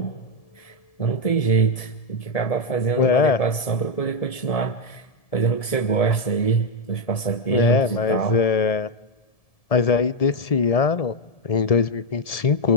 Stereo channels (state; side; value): late; right; 1.7 ms